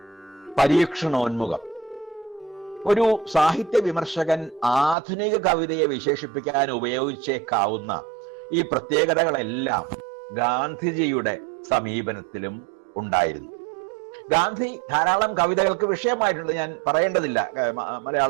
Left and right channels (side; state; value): left; drops out; at 5.0 s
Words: പരീക്ഷണോന്മുഖം. ഒരു സാഹിത്യ വിമർശകൻ ആധുനിക കവിതയെ വിശേഷിപ്പിക്കാൻ ഉപയോഗിച്ചേക്കാവുന്ന ഈ പ്രത്യേകതകളെല്ലാം ഗാന്ധിജിയുടെ സമീപനത്തിലും ഉണ്ടായിരുന്നു. ഗാന്ധി ധാരാളം കവിതകൾക്ക് വിഷയമായിട്ടുണ്ട്. ഞാൻ പറയേണ്ടതില്ല.